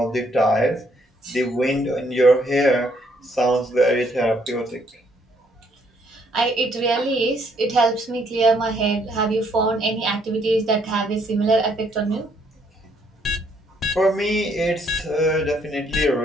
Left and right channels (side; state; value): both; normal; correlation 0.69